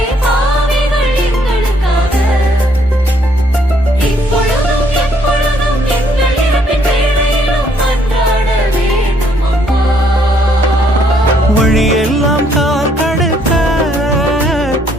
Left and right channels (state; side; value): normal; both; correlation 0.68